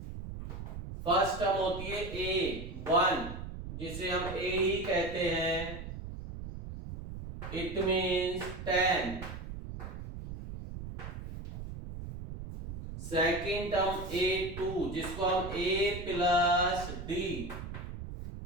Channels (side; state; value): right; noise; rumble, 9 dB below the sound